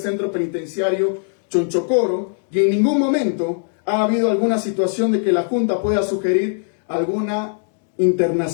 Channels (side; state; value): right; silent; digital silence